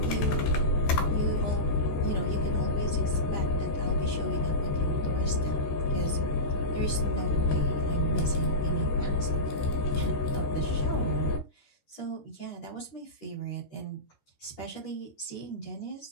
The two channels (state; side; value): late; right; 14 ms